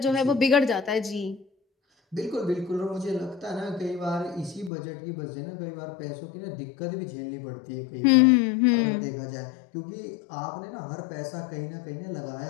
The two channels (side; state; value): right; drops out; at 4.7 s